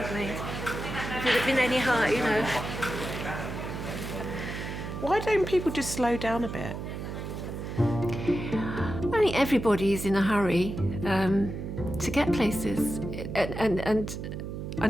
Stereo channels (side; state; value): right; noise; hum, 7 dB below the sound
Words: me. If it had been any higher, you know. Why don't people just slow down a bit? I think everybody's in a hurry to get places. And I